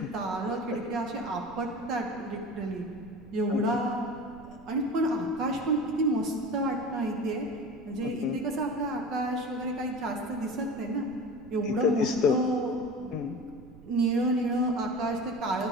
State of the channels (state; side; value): noise; right; rumble, 21 dB below the sound